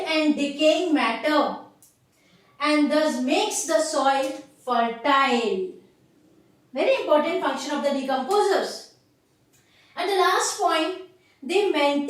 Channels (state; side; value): identical; both; correlation 1.00